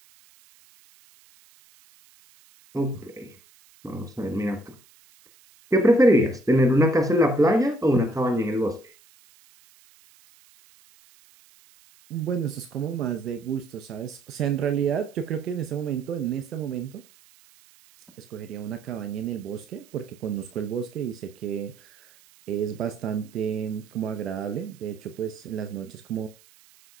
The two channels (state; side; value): noise; right; hiss, 28 dB below the sound